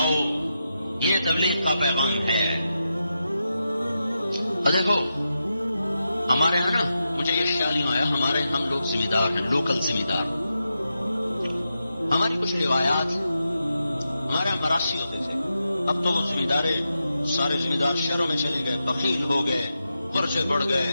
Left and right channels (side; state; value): both; inverted; correlation -0.88